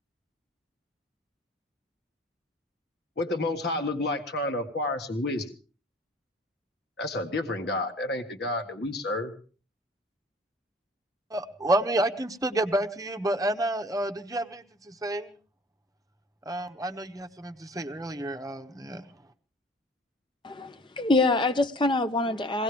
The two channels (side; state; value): both; normal; correlation 0.48